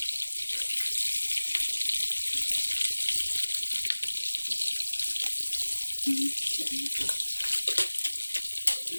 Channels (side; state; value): both; inverted; correlation -1.00